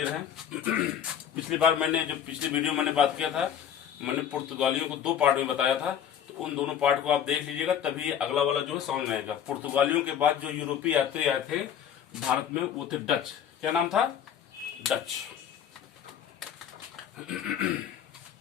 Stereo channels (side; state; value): right; quieter; 9.0 dB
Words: हैं। पिछली बार पिछली वीडियो मैंने बात किया था, मैंने पुर्तगालियों को दो पार्ट में बताया था, तो उन दोनों पार्ट को आप देख लीजिएगा, तभी अगला वाला जो है समझ में आएगा। पुर्तगालियों के बाद जो यूरोपीय यात्री आए थे भारत में वो थे डच। क्या नाम था? डच।